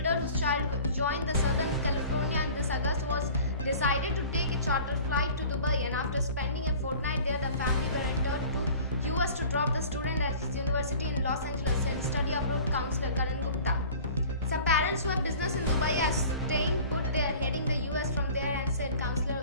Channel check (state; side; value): inverted; both; correlation -0.44